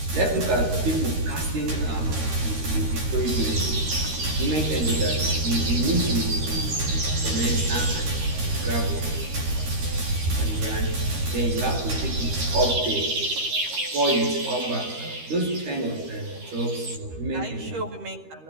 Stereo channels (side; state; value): left; late; 13 ms